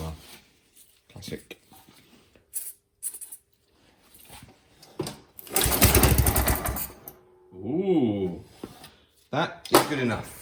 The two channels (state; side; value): identical; both; correlation 1.00